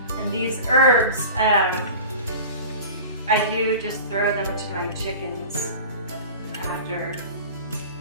And these herbs, I do just throw them to my chickens after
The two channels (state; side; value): inverted; both; correlation -0.37